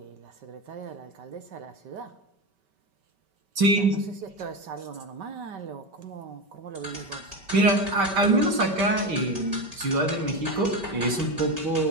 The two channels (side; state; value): left; late; 5.2 ms